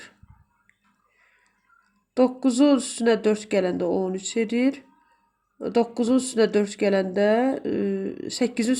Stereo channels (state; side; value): identical; both; correlation 1.00